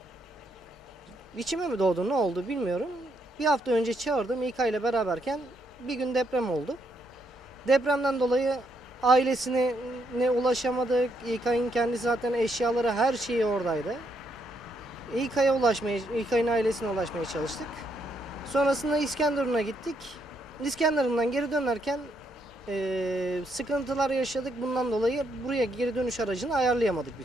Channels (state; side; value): normal; both; correlation 0.76